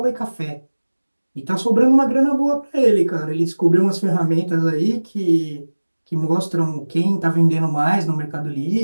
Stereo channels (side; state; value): both; inverted; correlation -1.00